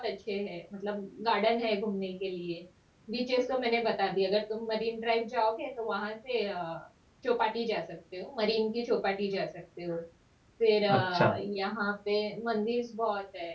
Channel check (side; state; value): both; identical; correlation 1.00